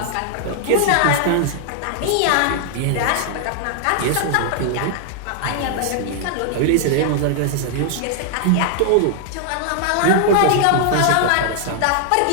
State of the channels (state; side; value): different; both; correlation -0.01